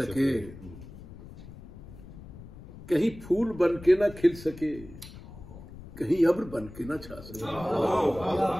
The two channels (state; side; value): noise; left; rumble, 16 dB below the sound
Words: कहीं फूल बन के ना खिल सके, कहीं अब्र बन के ना छा सके।